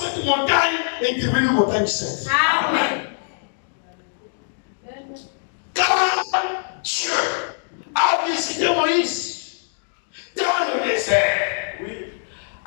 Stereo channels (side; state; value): right; silent; digital silence